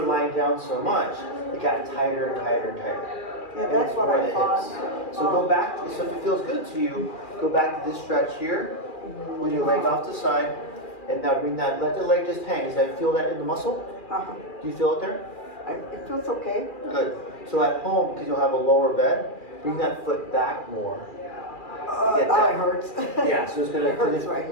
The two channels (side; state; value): right; late; 2.4 ms